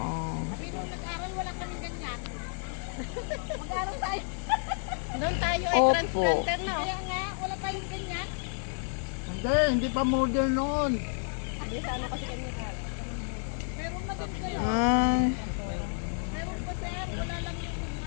Doon tayo ay Opo. transplanter, no? Kaya nga, wala pa yung ganyan. Hindi pa model noon. Hindi sa ano kasi kami ka. Meron na din kayo. Meron pa sir, wala lang yung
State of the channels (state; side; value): silent; right; digital silence